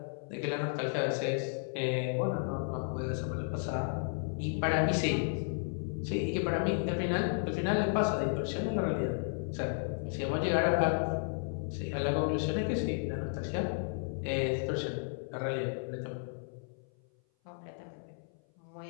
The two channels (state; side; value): silent; right; 55 dB below the other